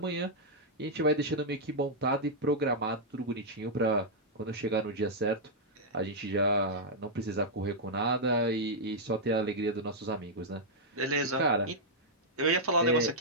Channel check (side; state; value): both; normal; correlation -0.06